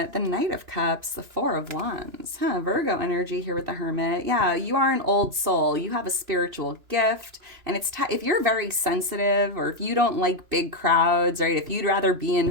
the Knight of Cups, the Four of Wands. Virgo energy here with the Hermit. Yeah, you are an old soul. You have a spiritual gift. And it's if you're very sensitive or if you don't like big crowds, right? If you'd rather be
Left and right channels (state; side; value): late; left; 3.0 ms